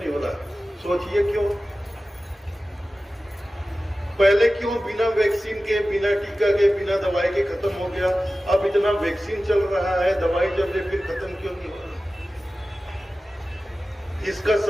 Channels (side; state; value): both; normal; correlation 0.95